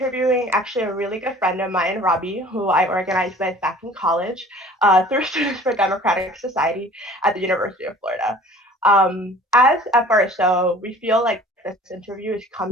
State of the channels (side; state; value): both; normal; correlation 0.48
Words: actually a really good friend of mine, Robbie, who I organized with back in college through Students for Democratic Society at the University of Florida. As FRSO, we feel like this interview is